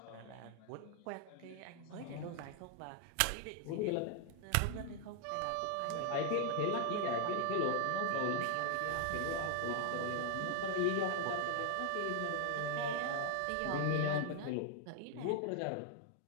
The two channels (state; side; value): different; both; correlation 0.00